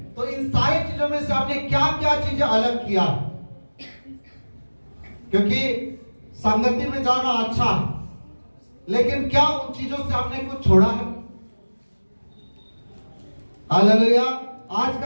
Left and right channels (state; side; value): inverted; both; correlation -1.00